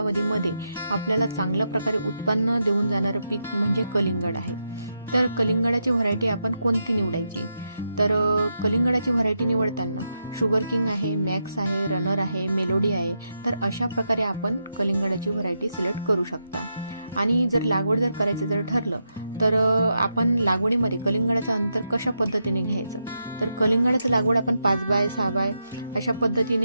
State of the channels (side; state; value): both; inverted; correlation -0.84